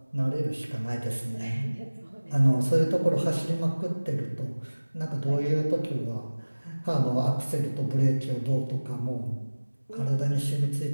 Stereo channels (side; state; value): both; inverted; correlation -1.00